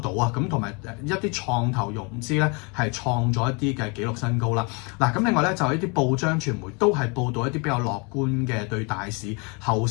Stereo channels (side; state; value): right; quieter; 31.9 dB